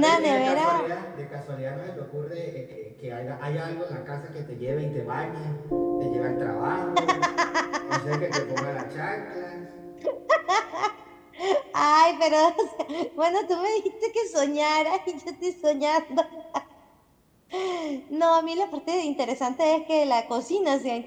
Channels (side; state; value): both; identical; correlation 1.00